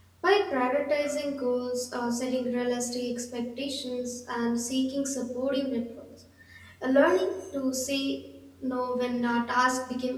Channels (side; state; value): both; identical; correlation 1.00